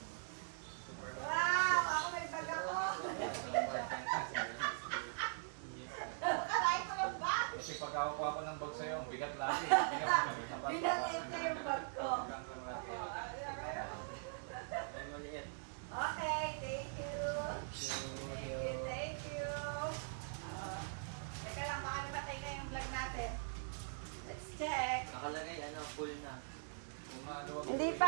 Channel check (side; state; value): left; silent; digital silence